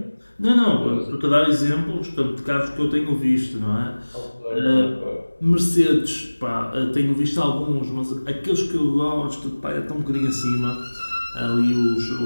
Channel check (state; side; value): inverted; both; correlation -1.00